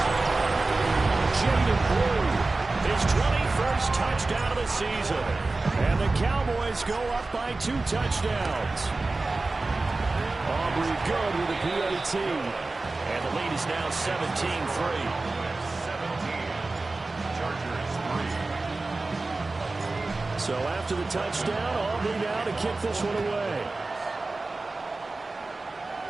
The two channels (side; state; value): left; quieter; 3.4 dB